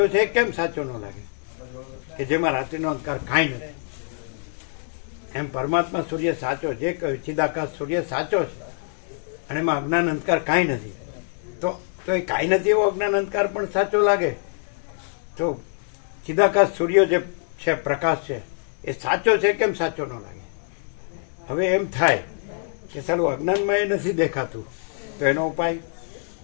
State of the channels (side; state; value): right; silent; 62 dB below the other